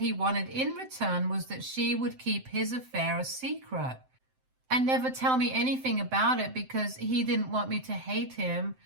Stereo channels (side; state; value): left; late; 7.7 ms